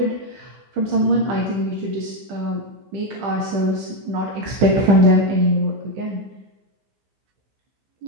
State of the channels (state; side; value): late; left; 15 ms